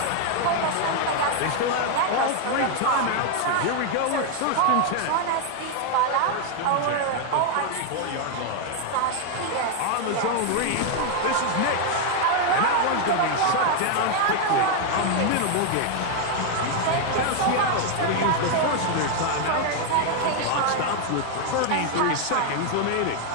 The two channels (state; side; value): different; both; correlation 0.01